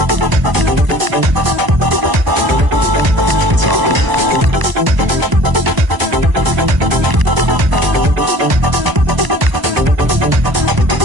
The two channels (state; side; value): late; left; 1.0 ms